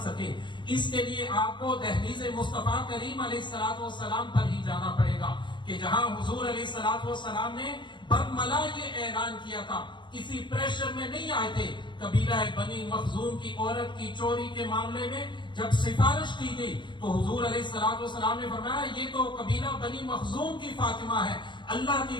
سکے۔ اس کے لیے آپ کو دہلیز مصطفیٰ کریم علیہ السلام پر ہی جانا پڑے گا کہ جہاں حضور علیہ السلام نے برملا یہ اعلان کیا تھا، کسی پریشر میں نہیں آئے تھے۔ قبیلہ بنی مخزوم کی عورت کی چوری کے معاملے میں جب سفارش کی گئی تو حضور علیہ السلام نے فرمایا یہ تو قبیلہ بنی مخزوم کی فاطمہ ہے، اللہ کی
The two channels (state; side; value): late; right; 0.23 ms